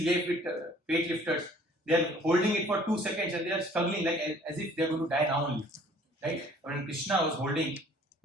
weightlifters, they are holding it for 2 seconds and they are struggling like as if they are going to die now only. Right? When Krishna was holding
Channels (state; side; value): normal; both; correlation 0.54